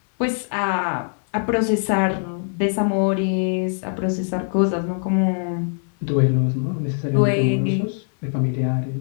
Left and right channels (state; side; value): silent; right; 64 dB below the other